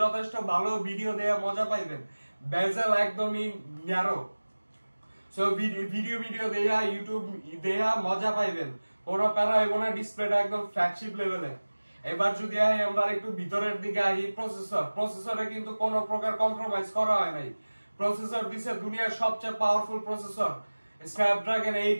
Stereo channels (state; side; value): inverted; both; correlation -1.00